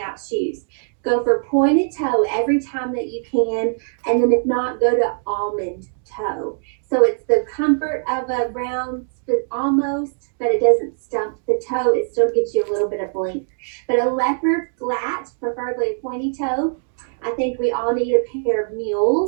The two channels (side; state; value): left; silent; digital silence